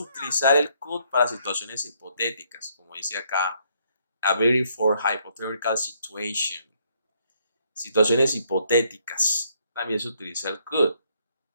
el could para situaciones hipotéticas, como dice acá, a very for hypothetical situation. Situaciones hipotéticas. También se utiliza el could.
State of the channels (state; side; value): inverted; both; correlation -0.70